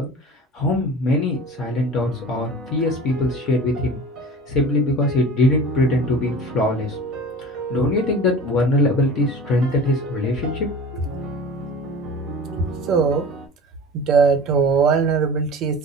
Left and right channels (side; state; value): both; normal; correlation 0.38